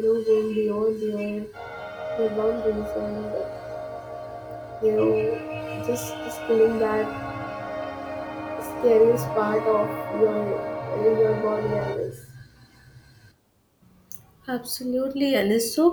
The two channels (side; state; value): both; identical; correlation 1.00